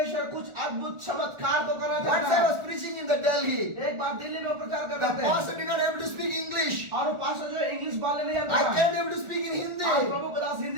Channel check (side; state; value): left; late; 1.4 ms